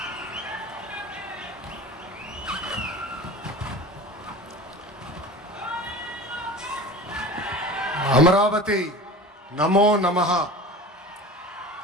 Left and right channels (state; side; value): normal; both; correlation 0.36